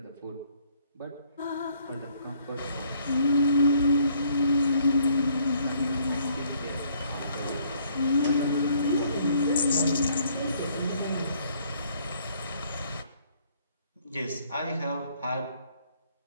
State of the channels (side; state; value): both; inverted; correlation -0.64